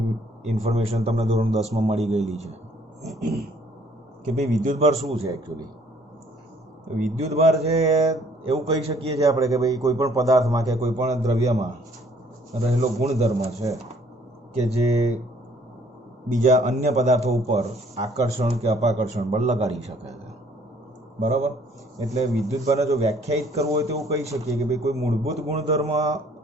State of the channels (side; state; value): both; normal; correlation 0.60